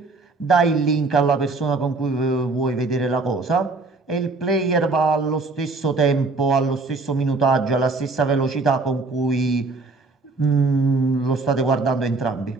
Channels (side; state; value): left; quieter; 3.6 dB